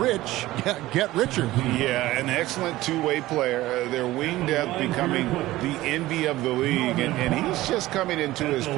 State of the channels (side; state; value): left; quieter; 17.0 dB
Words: get richer. Yeah, an excellent two-way player. Their wing depth becoming the envy of the league. And he's just coming into his